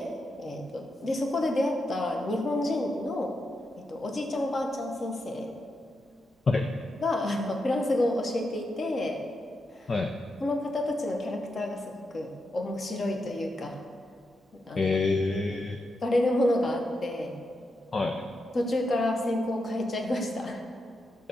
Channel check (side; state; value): both; normal; correlation 0.85